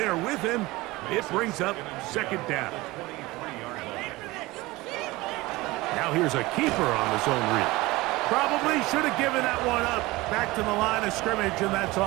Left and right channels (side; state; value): left; quieter; 20.6 dB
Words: with him. It brings up 2nd down. Now here's a keeper on the zone read. Probably should have given that one up. Back to the line of scrimmage, and that's